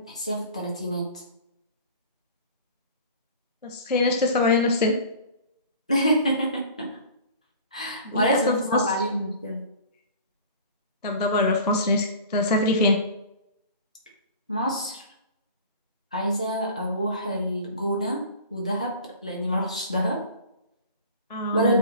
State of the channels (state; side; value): inverted; both; correlation -0.41